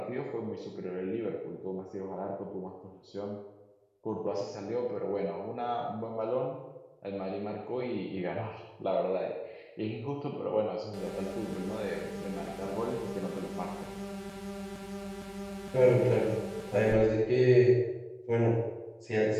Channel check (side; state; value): both; identical; correlation 1.00